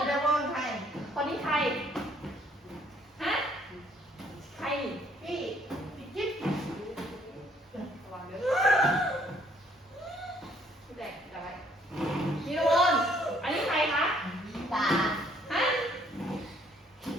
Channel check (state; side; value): normal; both; correlation 0.64